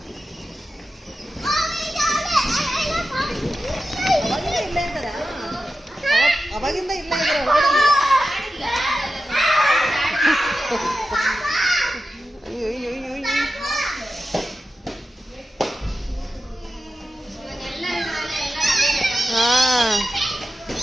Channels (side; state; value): both; normal; correlation 0.92